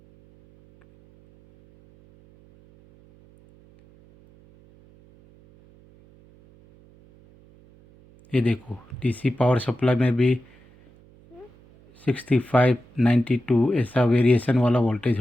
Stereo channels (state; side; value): noise; right; hum, 28 dB below the sound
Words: ये देखो डीसी पावर सप्लाई में भी 65 92 ऐसा वेरिएशन वाला वोल्टेज